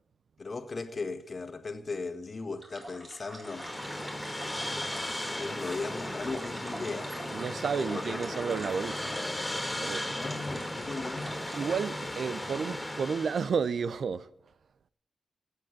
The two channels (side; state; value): both; normal; correlation 0.88